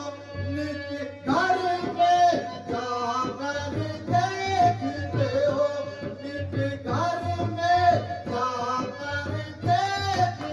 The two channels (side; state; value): both; identical; correlation 1.00